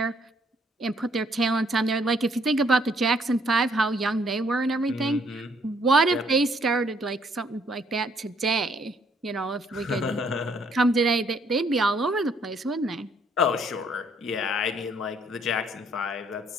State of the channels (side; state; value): both; normal; correlation 0.66